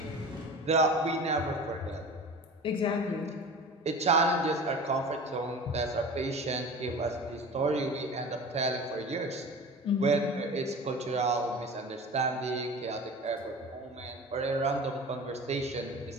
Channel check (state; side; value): normal; both; correlation 0.36